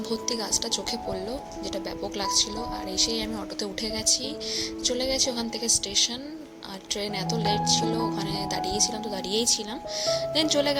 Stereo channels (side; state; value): both; identical; correlation 1.00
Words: ভর্তি গাছটা চোখে পড়লো, যেটা ব্যাপক লাগছিল। আর এসেই আমি অটোতে উঠে গেছি, চলে গেছি ওখান থেকে স্টেশন। আর ট্রেন এত লেট ছিল, ওখানে দাঁড়িয়েছিলাম তো দাঁড়িয়েই ছিলাম। দেন চলে